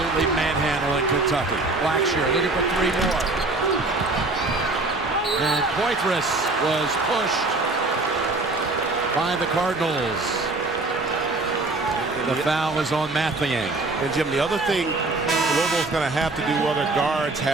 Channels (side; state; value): left; quieter; 3.2 dB